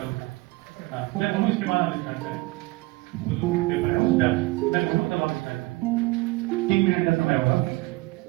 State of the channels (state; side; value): quieter; left; 21.9 dB